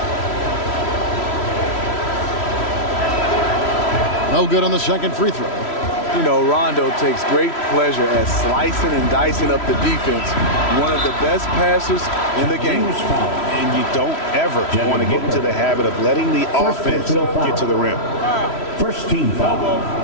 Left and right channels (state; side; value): late; right; 3.1 ms